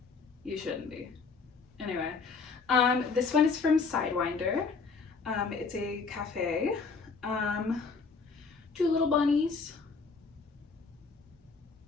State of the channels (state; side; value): quieter; right; 4.7 dB